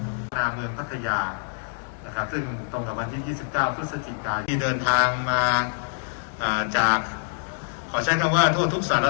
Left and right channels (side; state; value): right; silent; 61 dB below the other